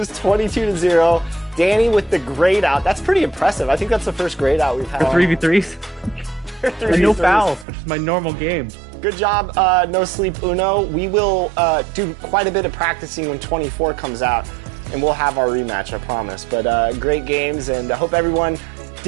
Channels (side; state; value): left; drops out; at 7.7 s